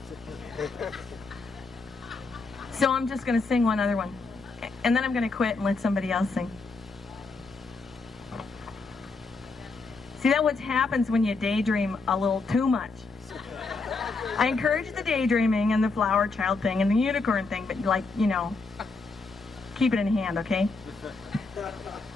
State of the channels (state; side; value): quieter; right; 3.9 dB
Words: So I'm just going to sing one other one. And then I'm going to quit and let somebody else sing. See, that's what happens when you daydream a little too much. I encourage the daydreaming and the flower child thing and the unicorn thing, but like, you know, keep it in hand, okay?